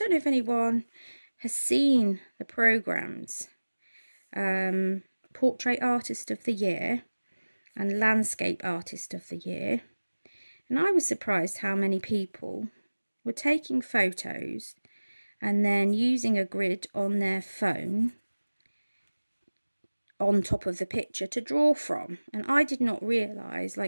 know if anyone has seen the programs, Portrait Artist of the Year and Landscape Artist of the Year, and I was surprised how many people were taking photos and then using a grid on their phone on top of the picture to draw from. And I did not realise,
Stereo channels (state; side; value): inverted; both; correlation -1.00